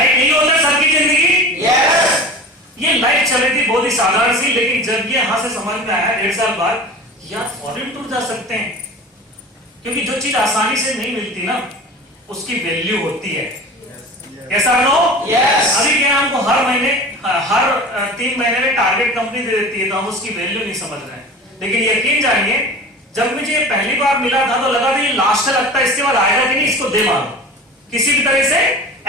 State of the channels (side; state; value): both; normal; correlation 0.36